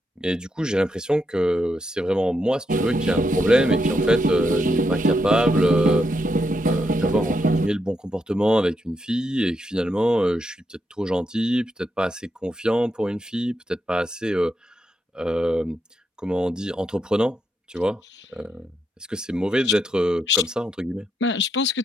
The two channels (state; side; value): normal; both; correlation 0.82